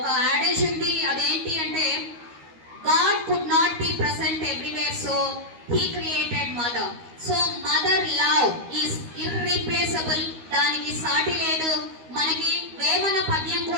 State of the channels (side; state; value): left; late; 13 ms